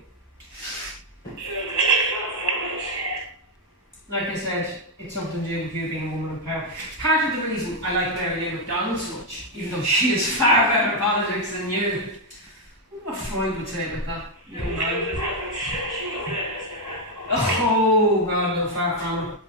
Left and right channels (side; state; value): both; normal; correlation 0.02